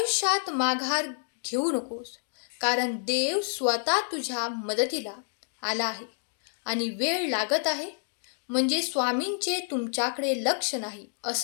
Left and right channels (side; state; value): right; silent; digital silence